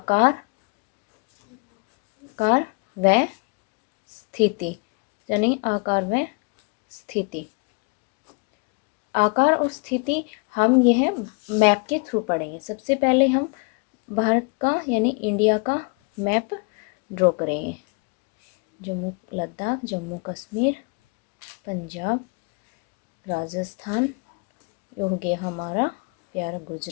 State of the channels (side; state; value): right; quieter; 33.8 dB